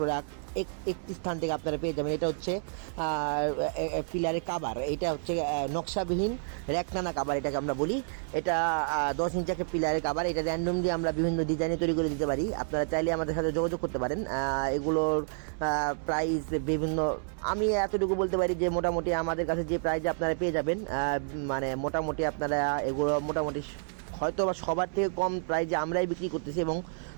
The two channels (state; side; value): silent; left; 58 dB below the other